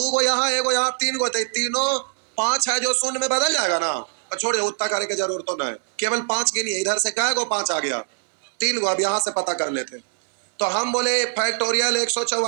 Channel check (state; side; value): silent; left; 64 dB below the other